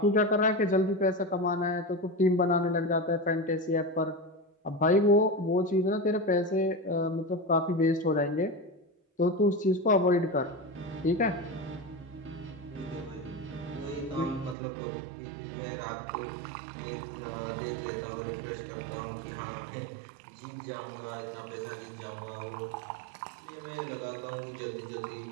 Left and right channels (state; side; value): drops out; left; at 14.6 s